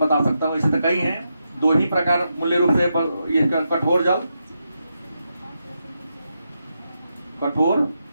सकता हूं। इसे तो कई हैं, 2 ही प्रकार मूल्य रूप से, ये कठोर जल, कठोर,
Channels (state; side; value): inverted; both; correlation -0.85